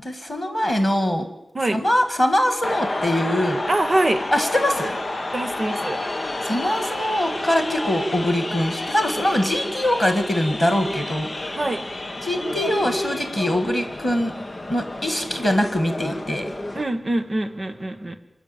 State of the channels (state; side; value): normal; both; correlation 0.94